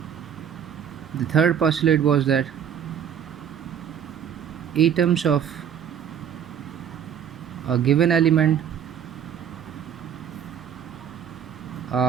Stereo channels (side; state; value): left; quieter; 8.8 dB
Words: The third postulate was that atoms of a given element